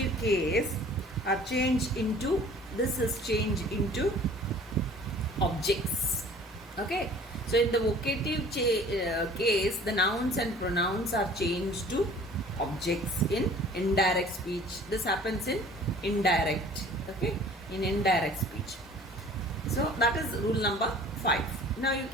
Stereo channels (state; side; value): normal; both; correlation 0.49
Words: case are changed into, this is changed into objects. Okay, so in the vocative case, the nouns and pronouns are changed to objects in indirect speech. This happens in indirect, okay, in indirect speech. So that is rule number 5. Now you